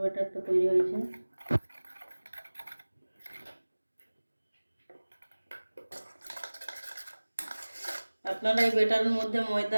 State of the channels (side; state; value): both; inverted; correlation -1.00